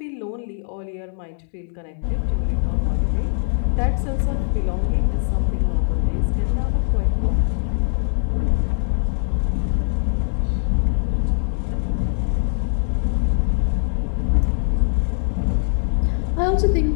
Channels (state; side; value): silent; right; 65 dB below the other